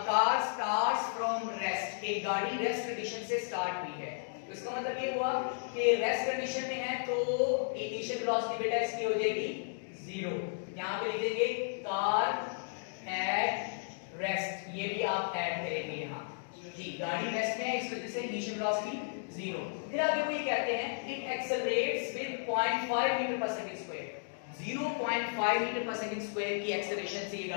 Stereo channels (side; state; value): right; silent; digital silence